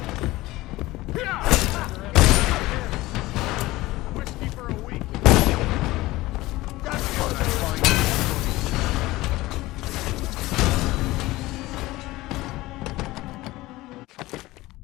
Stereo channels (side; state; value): right; quieter; 18.8 dB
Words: Whiskey for a week. That's what I find.